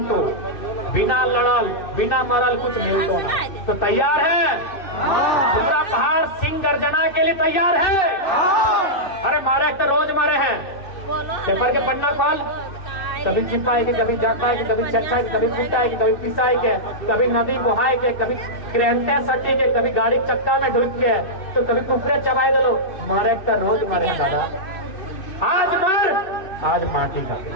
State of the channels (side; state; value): right; late; 2.6 ms